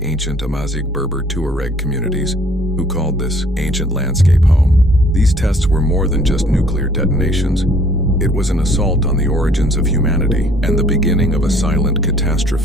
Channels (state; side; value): normal; both; correlation 0.59